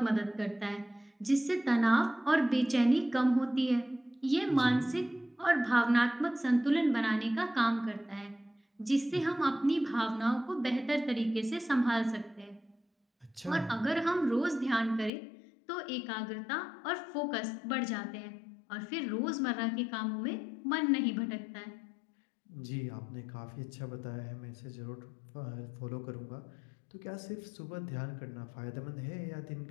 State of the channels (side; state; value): right; drops out; at 15.1 s